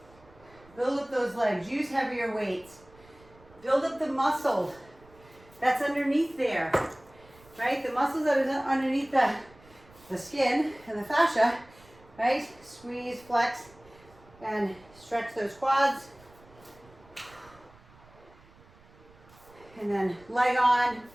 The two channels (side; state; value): right; noise; rumble, 26 dB below the sound